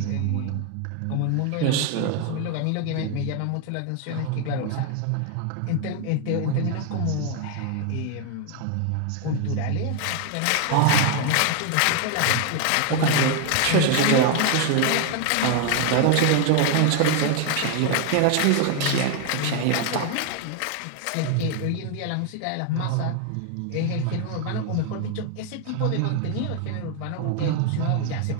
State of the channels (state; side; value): different; both; correlation 0.00